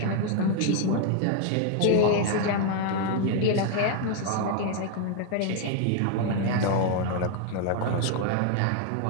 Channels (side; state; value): both; different; correlation 0.01